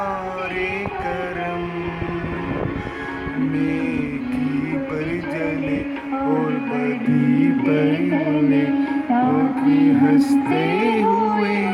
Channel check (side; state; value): both; identical; correlation 1.00